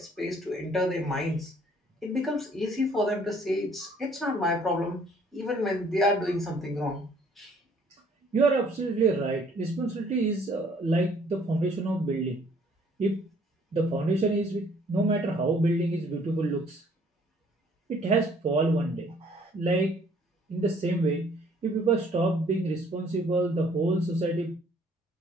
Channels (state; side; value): normal; both; correlation 0.60